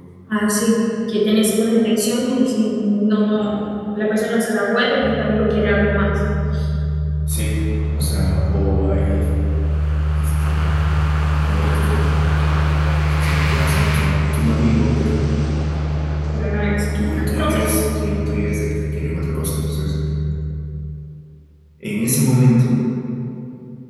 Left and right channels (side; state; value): both; identical; correlation 1.00